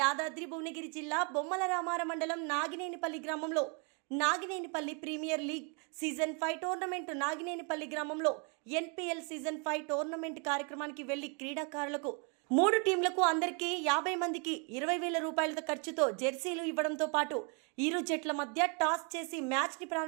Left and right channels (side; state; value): left; quieter; 36.5 dB